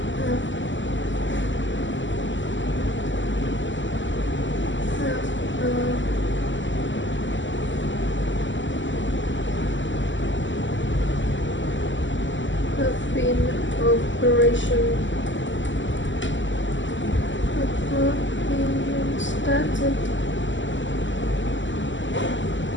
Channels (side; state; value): right; late; 0.54 ms